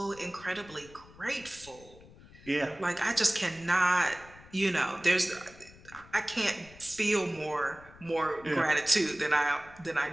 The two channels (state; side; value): noise; left; rumble, 22 dB below the sound